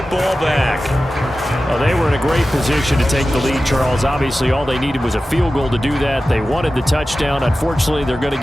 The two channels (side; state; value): both; normal; correlation 0.94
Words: back. Well, they were in a great position to take the lead, Charles. Obviously, all they needed was a field goal to do that. They wanted the touchdown. Unfortunately, they're going to